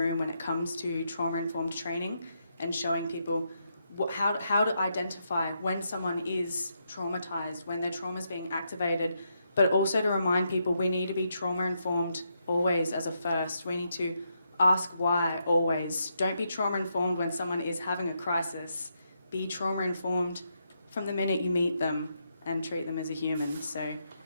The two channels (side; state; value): both; inverted; correlation -0.80